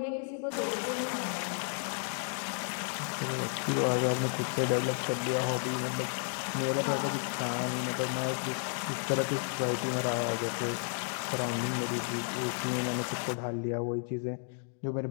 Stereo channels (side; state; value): right; silent; 56 dB below the other